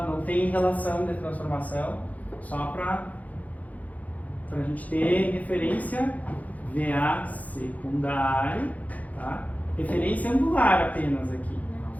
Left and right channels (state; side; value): late; right; 0.075 ms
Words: tem relação de transformação, só para a gente ter referência VA secundário, tá? Referência angular apenas aqui,